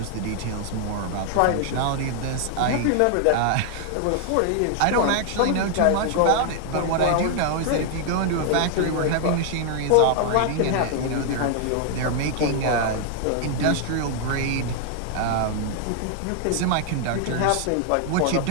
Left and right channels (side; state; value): both; different; correlation 0.00